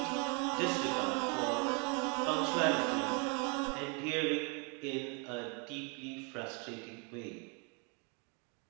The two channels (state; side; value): quieter; left; 34.2 dB